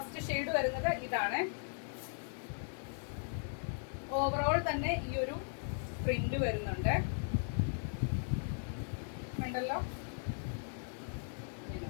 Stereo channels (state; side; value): silent; right; digital silence